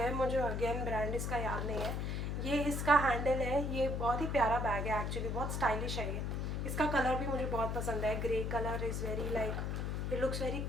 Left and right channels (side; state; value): left; noise; hum, 1 dB below the sound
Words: मुझे अगेन ब्रांड इसका याद नहीं है। ये इसका हैंडल है। ये बहुत ही प्यारा बैग है एक्चुअली, बहुत स्टाइलिश है ये। इसका कलर भी मुझे बहुत पसंद है। Grey colour is very like it looks very